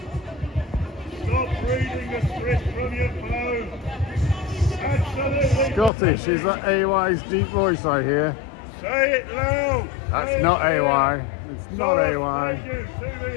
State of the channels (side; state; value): right; drops out; at 5.9 s